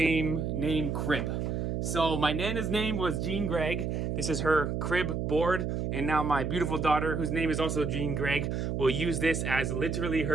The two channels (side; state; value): right; noise; hum, 1 dB below the sound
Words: named Crib. So my Nana's name was Jean Gregg. This is her crib board. And now my beautiful daughter, whose name is also Jean Gregg, will use this as literally